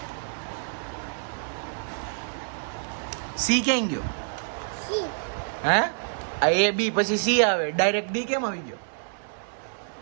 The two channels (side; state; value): left; silent; digital silence